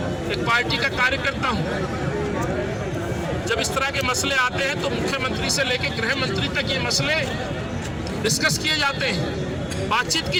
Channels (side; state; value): both; identical; correlation 1.00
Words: एक पार्टी का कार्यकर्ता हूं। जब इस तरह के मसले आते हैं तो मुख्यमंत्री से लेकर गृह मंत्री तक ये मसले डिस्कस किए जाते हैं, बातचीत की